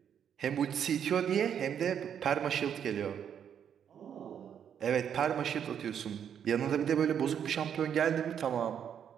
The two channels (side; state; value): left; quieter; 8.5 dB